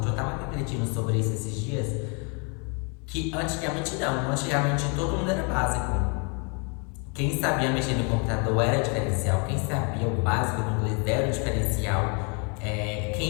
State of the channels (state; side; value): quieter; right; 35.1 dB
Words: Eu estava refletindo sobre isso esses dias, que antigamente não. Antigamente todo mundo era básico. Quem sabia mexer no computador era diferencial. Quem sabia o básico do inglês era o diferencial.